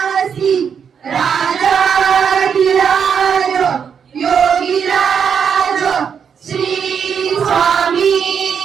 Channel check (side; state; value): left; quieter; 7.1 dB